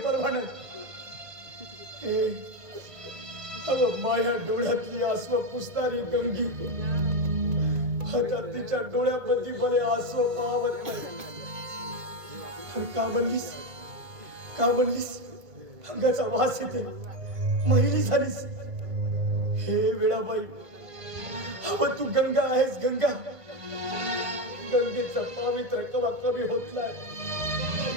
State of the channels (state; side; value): late; left; 1.5 ms